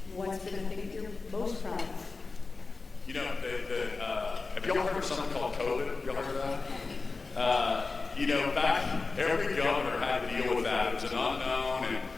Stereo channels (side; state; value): right; quieter; 4.0 dB